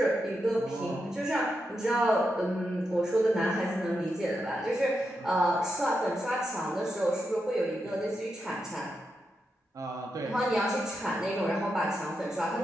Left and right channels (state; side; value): normal; both; correlation 0.86